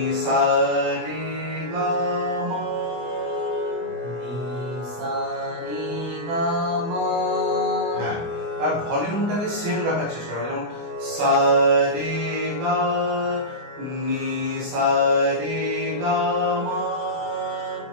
সা রে গা মা, নি সা রে গা মা। হ্যাঁ, আর ভলিউমটাকে সেম রাখার চেষ্টা করো, যেমন সা রে গা, নি সা রে গা মা,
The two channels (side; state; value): left; late; 24 ms